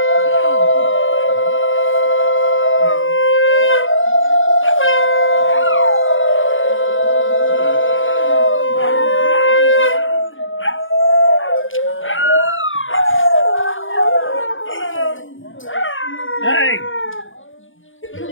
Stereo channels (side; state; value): right; late; 0.57 ms